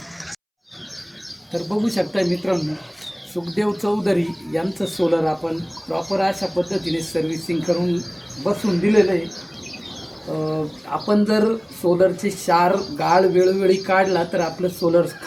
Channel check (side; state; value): both; identical; correlation 1.00